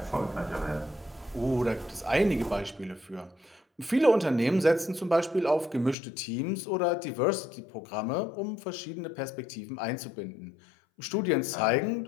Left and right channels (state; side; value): drops out; right; at 6.0 s